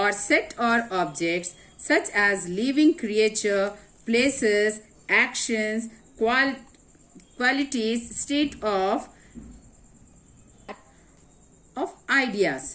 set or objects such as living creature, places, actions, qualities, state of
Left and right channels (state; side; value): identical; both; correlation 1.00